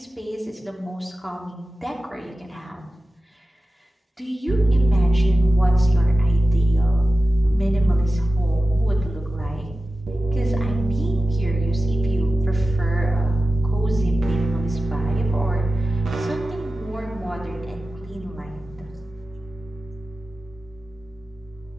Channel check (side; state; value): both; normal; correlation 0.95